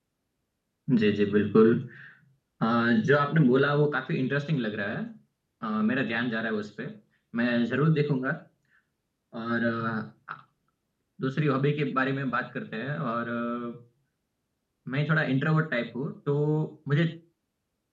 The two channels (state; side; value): identical; both; correlation 1.00